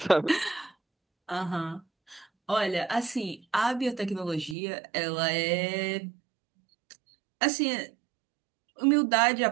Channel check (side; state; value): left; drops out; at 4.5 s